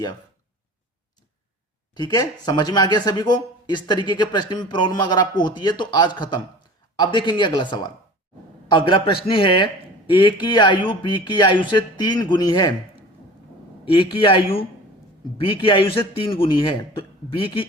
ठीक है, समझ में आ गया सभी को? इस तरीके के प्रश्न में प्रॉब्लम अगर आपको होती है तो आज खत्म। अब देखेंगे अगला सवाल। अगला प्रश्न है ए की आयु बी की आयु से 3 गुनी है। ए की आयु बी की आयु से 3 गुनी है, तो बी की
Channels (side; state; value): both; normal; correlation 0.40